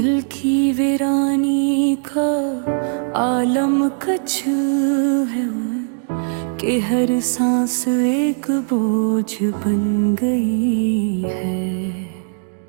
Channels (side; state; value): left; silent; digital silence